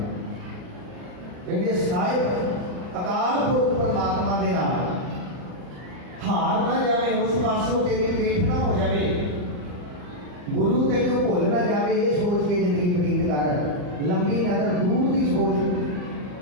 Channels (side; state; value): left; late; 39 ms